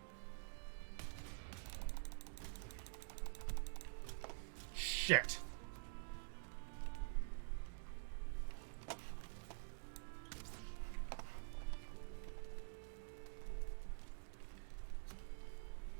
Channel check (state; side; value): silent; left; digital silence